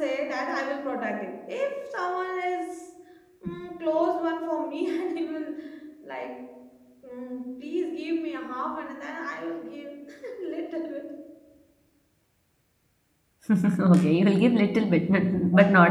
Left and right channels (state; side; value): identical; both; correlation 1.00